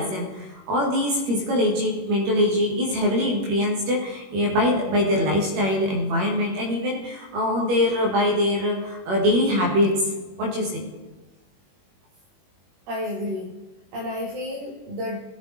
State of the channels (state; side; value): late; left; 21 ms